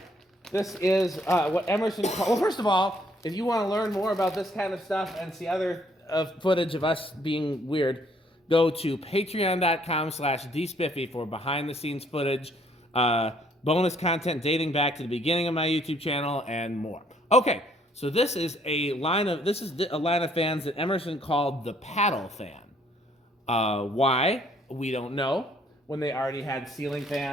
This is what Emerson called. Well, first of all, if you want to learn more about this kind of stuff and see other footage of us being weird, go to patreon.com/dspiffy for behind-the-scenes footage, bonus content dating back to the beginning of my YouTube channel, and more. Okay, so this is a line of fans that Emerson called the paddle fan. Why? We don't know. When they already had ceiling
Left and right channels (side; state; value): both; normal; correlation 0.64